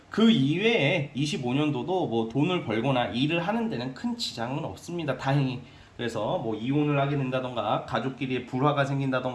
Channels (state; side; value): identical; both; correlation 1.00